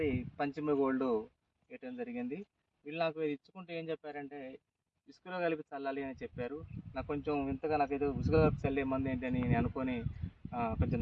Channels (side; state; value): both; identical; correlation 1.00